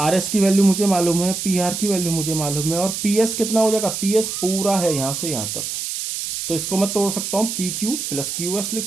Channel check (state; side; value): noise; right; hiss, 4 dB below the sound